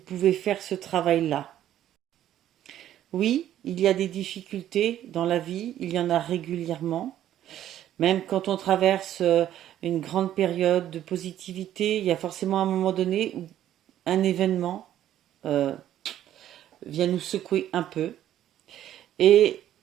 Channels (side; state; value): left; quieter; 11.8 dB